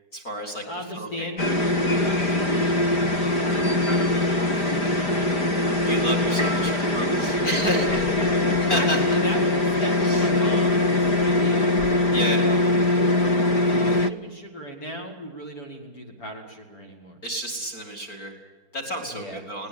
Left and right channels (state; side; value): late; right; 4.4 ms